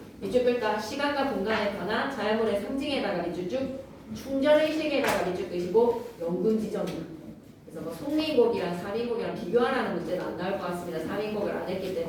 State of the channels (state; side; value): identical; both; correlation 1.00